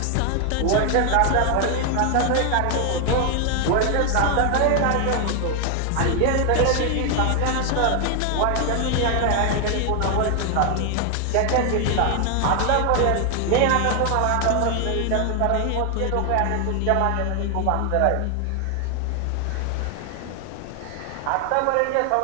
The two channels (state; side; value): different; both; correlation 0.00